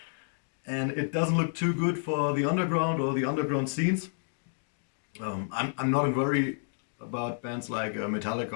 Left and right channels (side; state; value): right; silent; digital silence